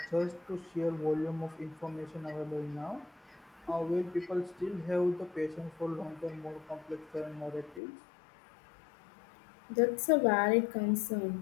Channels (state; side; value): drops out; right; at 7.8 s